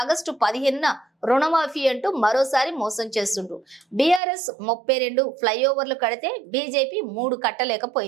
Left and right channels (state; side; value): drops out; left; at 4.2 s